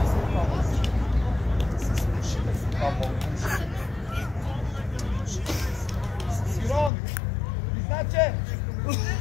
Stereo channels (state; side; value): drops out; right; at 6.9 s